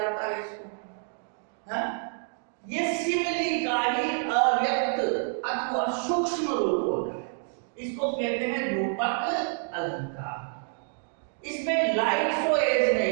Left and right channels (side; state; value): left; silent; 59 dB below the other